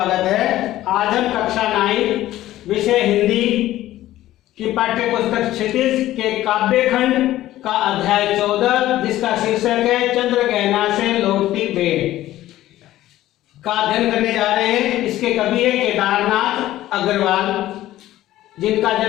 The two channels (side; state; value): right; quieter; 14.6 dB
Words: है। आज हम कक्षा 9 विषय हिंदी की पाठ्य पुस्तक क्षितिज के काव्य खंड का अध्याय 14 जिसका शीर्षक है चंद्रगहना से लौटती बेर का अध्ययन करने जा रहे हैं। इसके कवि है केदारनाथ अग्रवाल, जिनका